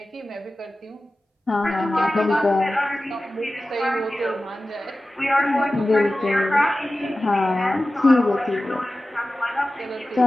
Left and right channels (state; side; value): normal; both; correlation 0.95